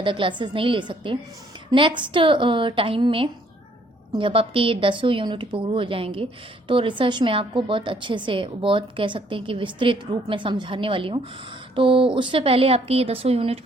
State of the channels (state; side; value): normal; both; correlation 0.64